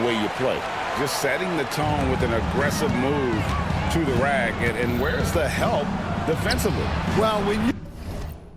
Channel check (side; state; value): both; identical; correlation 1.00